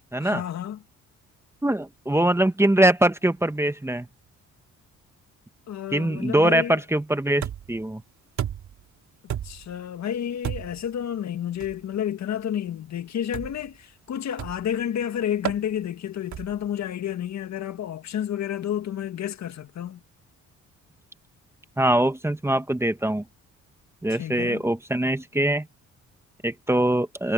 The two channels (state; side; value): normal; both; correlation 0.64